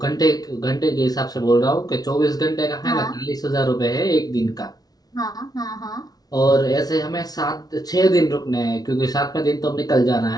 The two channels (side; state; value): right; late; 0.19 ms